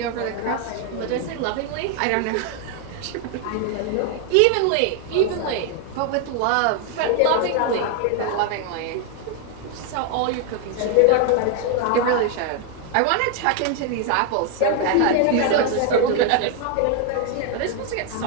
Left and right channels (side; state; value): both; different; correlation 0.00